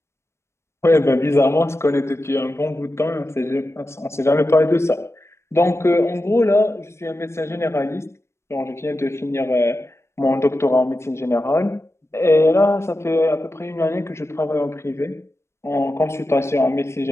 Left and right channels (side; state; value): right; late; 0.13 ms